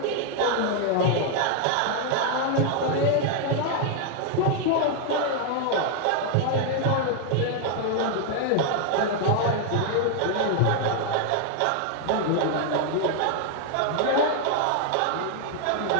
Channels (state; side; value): different; both; correlation 0.00